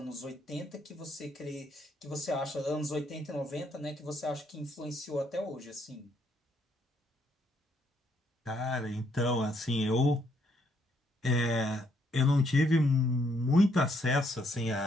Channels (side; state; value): both; normal; correlation 0.72